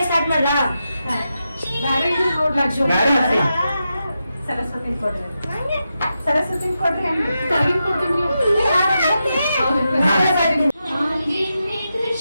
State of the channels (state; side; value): inverted; both; correlation -0.88